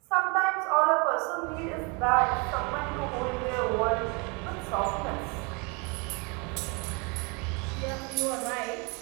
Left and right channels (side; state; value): left; quieter; 31.3 dB